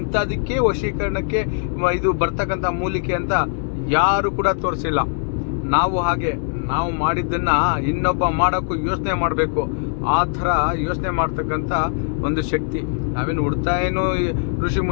ವಶೀಕರಣಕ್ಕೆ ಇದು ಬರ್ತಕ್ಕಂಥ ಮೂಲಿಕೆ ಅಂತ ಯಾರು ಕೂಡ ತೋರಿಸಿಲ್ಲ. ನಾವು ಮಾಡಿದ್ದನ್ನು ಇನ್ನೊಬ್ಬ ಮಾಡೋಕ್ಕೂ ಯೋಚನೆ ಮಾಡಬೇಕು. ಆ ಥರ ಯೋಚನೆ ಮಾಡ್ತಕ್ಕಂಥ ಒಂದು ಶಕ್ತಿ. ನಾವೇನು ಹುಡ್ತಾ ಏನು ಋಷಿ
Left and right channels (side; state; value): right; silent; 62 dB below the other